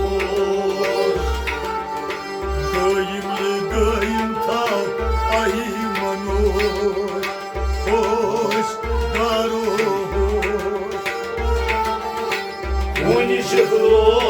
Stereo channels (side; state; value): both; identical; correlation 1.00